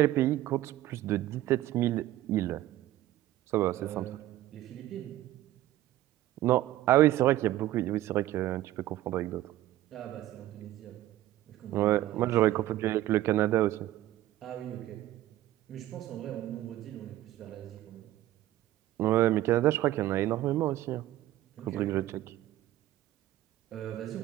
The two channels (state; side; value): quieter; left; 14.6 dB